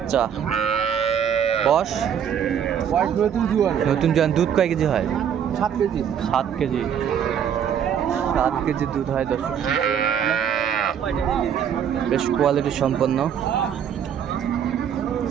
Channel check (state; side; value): quieter; left; 8.5 dB